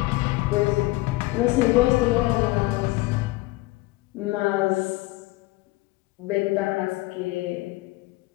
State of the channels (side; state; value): right; quieter; 20.2 dB